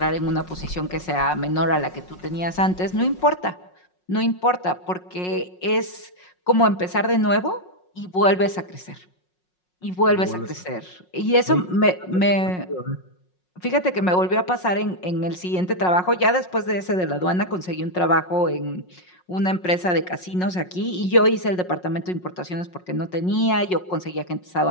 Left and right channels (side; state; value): right; late; 5.5 ms